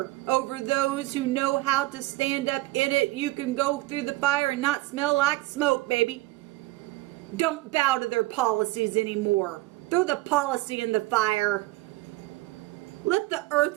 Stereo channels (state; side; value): quieter; left; 19.0 dB